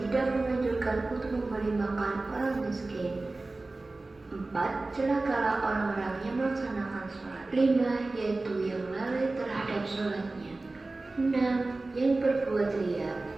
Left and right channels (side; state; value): left; quieter; 3.2 dB